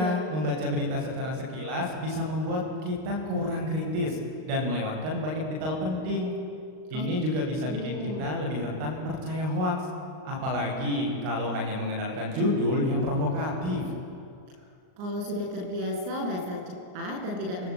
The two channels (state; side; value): late; left; 39 ms